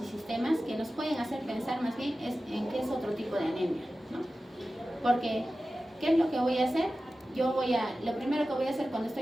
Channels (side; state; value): both; normal; correlation 0.95